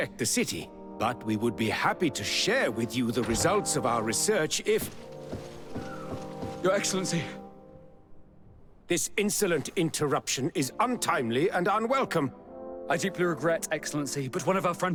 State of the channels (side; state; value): both; identical; correlation 1.00